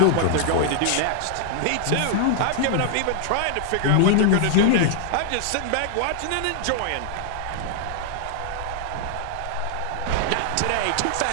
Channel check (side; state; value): both; different; correlation 0.00